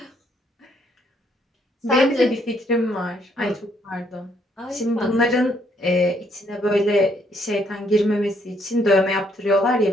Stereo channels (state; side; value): normal; both; correlation 0.70